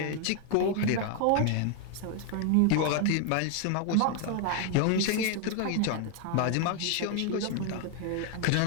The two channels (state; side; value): different; both; correlation 0.00